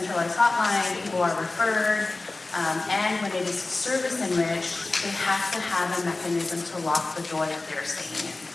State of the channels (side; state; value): right; quieter; 3.2 dB